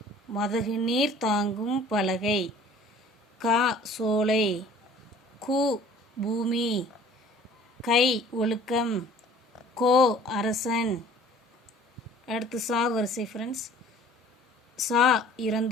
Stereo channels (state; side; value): normal; both; correlation 0.50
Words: மதகு நீர் தாங்கும் பலகை, கா சோலை, கு பூமி, கை ஒழுக்கம், கோ அரசன். அடுத்து சா வரிசை ஃப்ரெண்ட்ஸ். சா